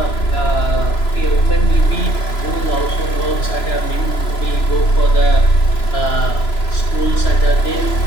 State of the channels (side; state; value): right; late; 3.0 ms